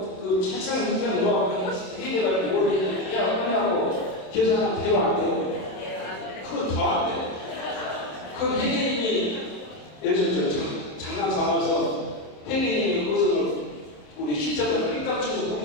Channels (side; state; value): right; late; 27 ms